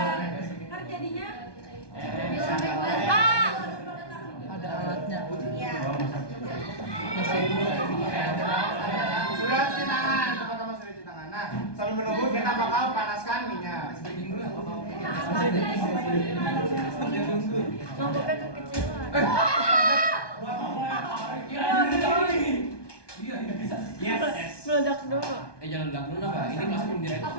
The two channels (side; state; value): right; late; 1.2 ms